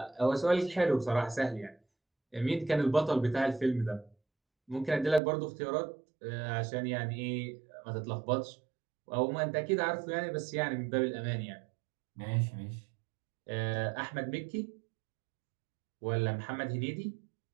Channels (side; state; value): left; drops out; at 5.2 s